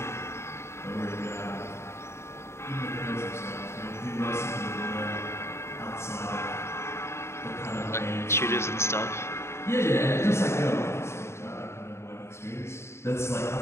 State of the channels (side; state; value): right; late; 0.13 ms